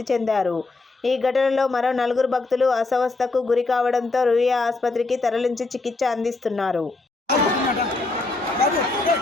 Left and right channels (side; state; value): right; quieter; 3.4 dB